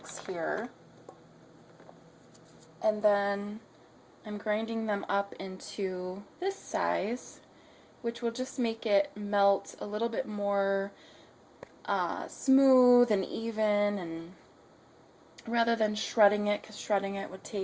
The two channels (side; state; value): both; identical; correlation 1.00